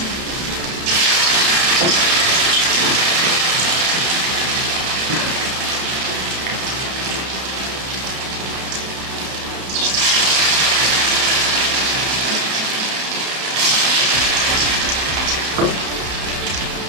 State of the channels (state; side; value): late; left; 32 ms